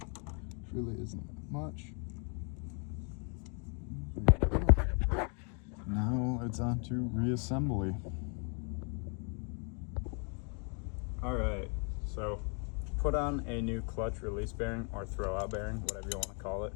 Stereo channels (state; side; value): quieter; right; 39.1 dB